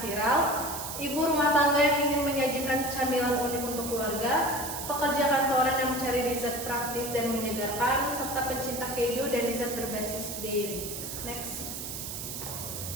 viral, ibu rumah tangga yang ingin menyajikan camilan unik untuk keluarga, pekerja kantoran yang mencari dessert praktis dan menyegarkan, serta pencinta keju dan dessert berbasis dairy. Next.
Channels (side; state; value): right; noise; hiss, 7 dB below the sound